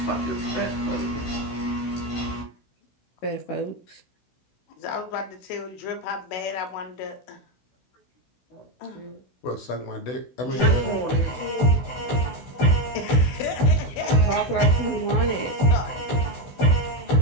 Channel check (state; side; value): late; right; 16 ms